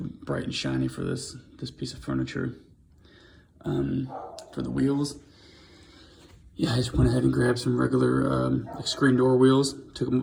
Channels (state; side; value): identical; both; correlation 1.00